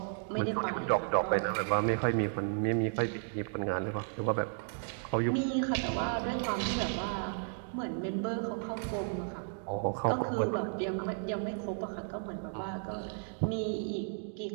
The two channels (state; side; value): silent; left; 55 dB below the other